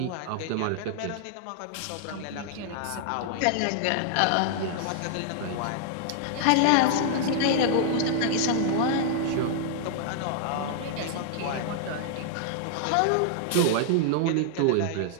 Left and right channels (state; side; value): different; both; correlation -0.01